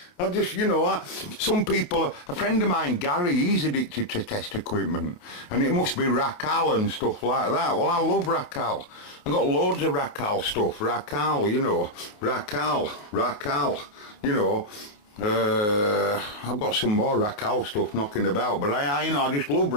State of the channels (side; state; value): right; late; 28 ms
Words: I just, you know, some people, a friend of mine, Gary, he's addicted to test equipment, and it must be Racal and stuff like that. Well, I love Racal. I've got loads of Racal stuff. Racal, you know, Racal, you know. I've got some more Racal stuff knocking about, but I just love